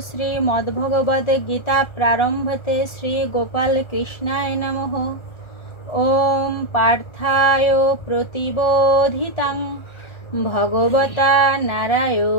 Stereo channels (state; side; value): late; right; 1.4 ms